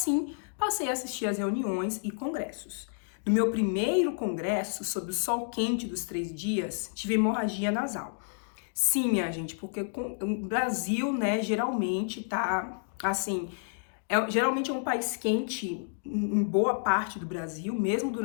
passei a assistir às reuniões e congressos. No meu primeiro congresso, sob o sol quente dos 3 dias, tive hemorragia nasal. Sim, minha gente, porque o Brasil, né, geralmente tá, assim, geralmente é um país quente em boa parte do Brasil, mesmo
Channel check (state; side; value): silent; right; digital silence